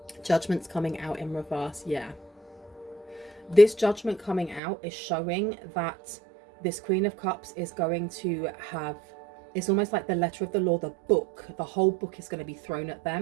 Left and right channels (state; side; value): drops out; left; at 4.6 s